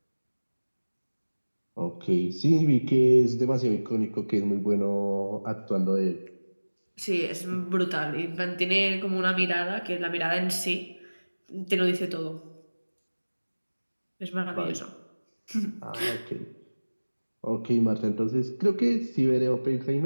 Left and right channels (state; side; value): inverted; both; correlation -1.00